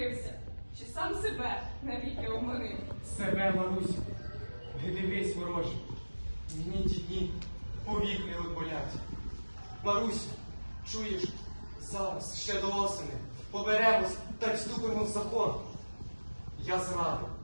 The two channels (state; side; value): inverted; both; correlation -1.00